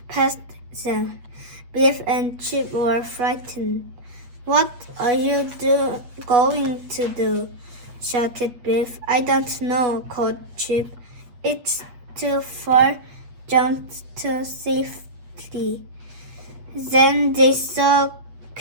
past them. Biff and Chip were frightened. What are you going to do? Shouted Biff. I don't know, called Chip. It's too far down to safety. Then they saw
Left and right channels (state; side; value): late; left; 8.3 ms